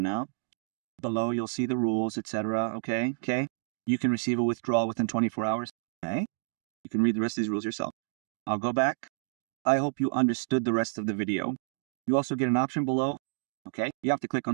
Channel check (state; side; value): silent; left; digital silence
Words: Below you'll see the rules, etc. Okay. You can receive a withdrawal within 24 hours. Okay. You can read the rest of these rules yourself. I'll go back. I hope you understood the rest of the video. You also get an option below. Okay. You have to click